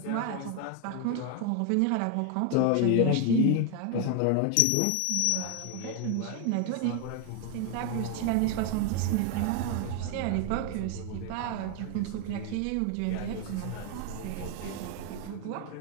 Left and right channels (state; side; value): different; both; correlation 0.01